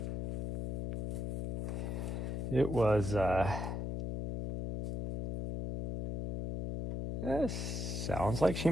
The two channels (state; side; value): noise; left; hum, 1 dB below the sound